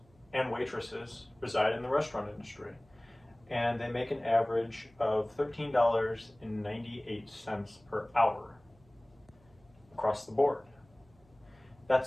and waitresses reside in the restaurant industry, and they make an average of $13.98 per hour across the board.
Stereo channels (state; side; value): noise; right; hum, 30 dB below the sound